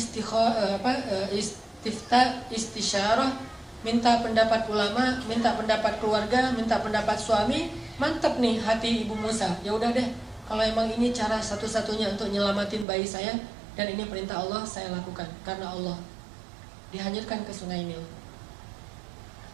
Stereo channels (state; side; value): drops out; left; at 12.9 s